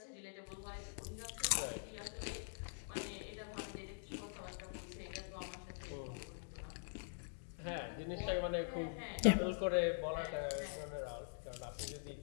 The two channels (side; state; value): right; silent; digital silence